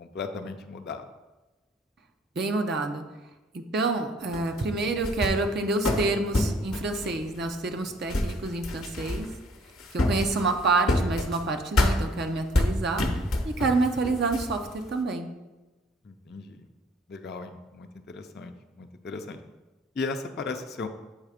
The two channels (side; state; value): both; normal; correlation 0.59